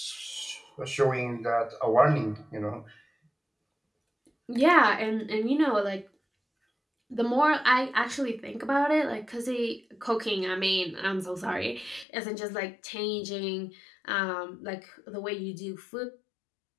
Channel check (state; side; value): drops out; right; at 12.1 s